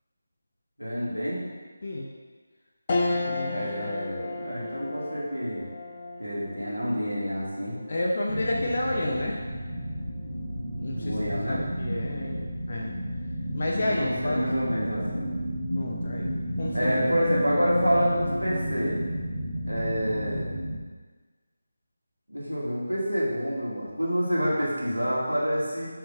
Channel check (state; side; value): inverted; both; correlation -0.94